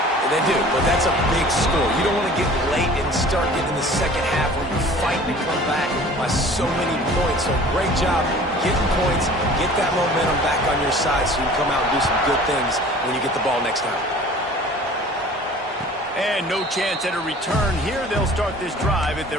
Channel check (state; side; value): normal; both; correlation 0.46